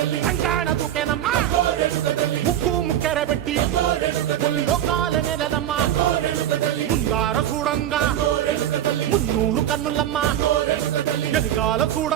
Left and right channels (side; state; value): left; quieter; 11.4 dB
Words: కంకాణ దూకేనమ్మా ముక్కు ముక్కెర పెట్టి ముల్లోకాల నెలనమ్మా ముందార చూడంగా మున్నూరు కన్నులమ్మా ఎనకాల